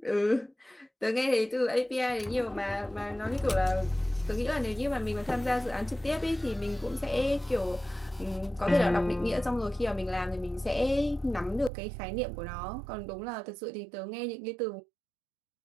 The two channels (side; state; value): left; drops out; at 11.7 s